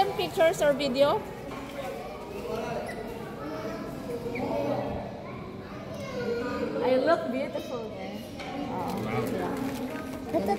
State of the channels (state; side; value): identical; both; correlation 1.00